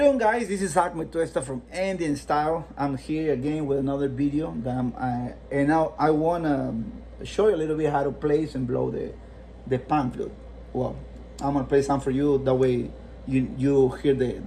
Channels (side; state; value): both; identical; correlation 1.00